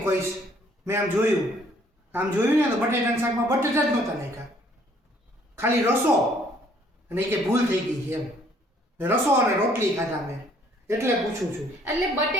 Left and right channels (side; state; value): both; normal; correlation 0.62